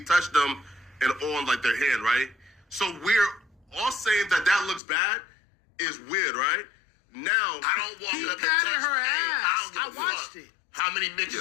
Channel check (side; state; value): right; drops out; at 4.8 s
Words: touched them and on like their hand, right? So we're all saying that looks bad is weird, right? Now I don't walk He up and patted touch her hey, ass. I don't I give a watched fuck it. how how many